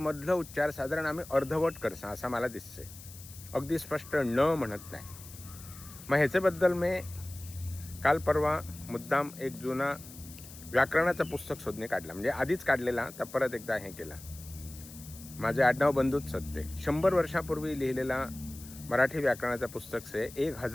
उच्चार साधारण आम्ही अर्धवट करसा असं मला दिसते. अगदी स्पष्ट न म्हणत नाही. मग ह्याच्याबद्दल मी काल परवा मुद्दाम एक जुना व्याकरणाचं पुस्तक शोधणे काढला. म्हणजे आधीच काढलेला, तर परत एकदा हे केला. माझे आडनाव बंधूच सत्ते 100 वर्षापूर्वी लिहिलेला मराठी व्याकरणाचं पुस्तक से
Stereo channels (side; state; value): left; noise; hiss, 17 dB below the sound